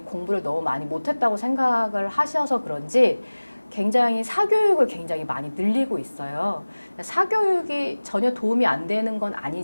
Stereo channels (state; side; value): inverted; both; correlation -1.00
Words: 공부를 너무 많이 못했다고 생각을 하셔서 그런지 굉장히 사교육을 굉장히 많이 늘리고 있어요. 사교육이 전혀 도움이 안 되는 건